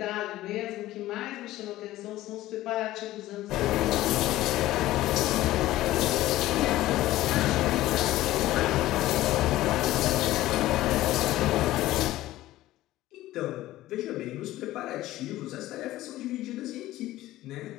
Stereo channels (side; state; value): right; quieter; 15.8 dB